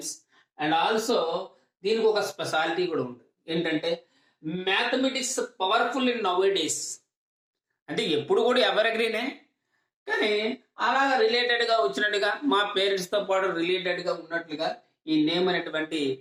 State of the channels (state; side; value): identical; both; correlation 1.00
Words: and also దీనికి ఒక స్పెషాలిటీ కూడా ఉంది. ఏంటంటే mathematics powerful in now days. అంటే ఎప్పుడు కూడా ఎవరిగ్రీనే, కానీ అలాగా రిలేటెడ్గా వచ్చినట్టుగా మా పేరెంట్స్తో పాటు రిలేటెడ్గా ఉన్నట్లుగా ఈ నేమ్ అనేటువంటి